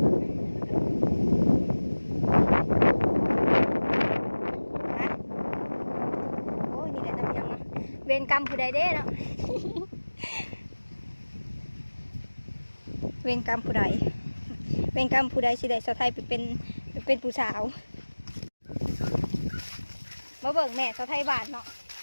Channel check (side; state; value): both; inverted; correlation -1.00